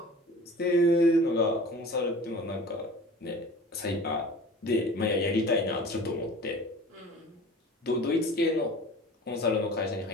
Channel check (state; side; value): normal; both; correlation 0.41